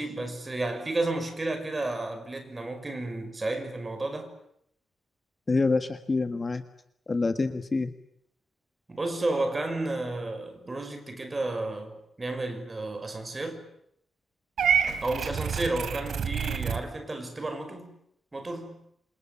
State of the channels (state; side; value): normal; both; correlation 0.87